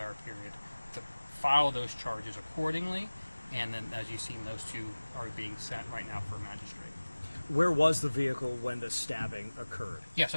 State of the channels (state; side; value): inverted; both; correlation -1.00